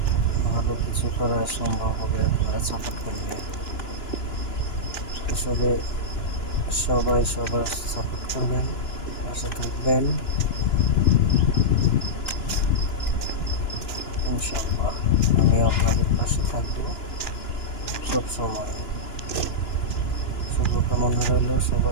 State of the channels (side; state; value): right; late; 2.9 ms